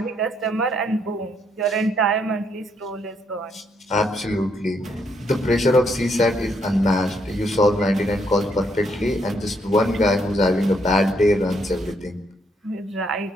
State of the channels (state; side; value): normal; both; correlation 0.74